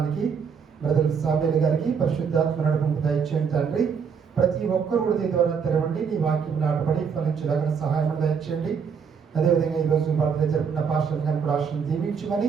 బ్రదర్ సామ్యూల్ గారికి పరిశుద్ధాత్మ నడుపుకు దయచేయండి తండ్రి. ప్రతి ఒక్కరు కూడా దీని ద్వారా తెరవండి, నీ వాక్యం నాటబడి ఫలించడానికి సహాయం దయచేయండి. అదేవిధంగా ఈరోజు బర్త్డే జరుపుకున్న పాస్టర్ గారిని కూడా ఆశను దీవించమని,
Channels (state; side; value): quieter; left; 6.4 dB